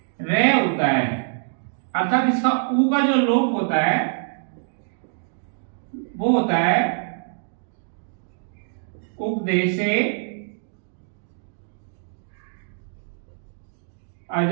रे होता है, अर्थात इसका ऊ का जो लोप होता है वो होता है उपदेशे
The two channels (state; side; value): silent; left; digital silence